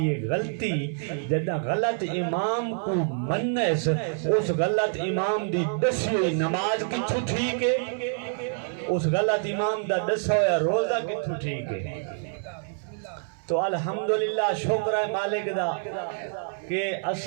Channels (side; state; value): left; silent; 58 dB below the other